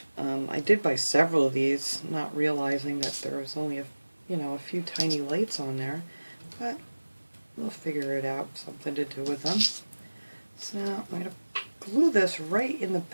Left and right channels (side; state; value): both; inverted; correlation -1.00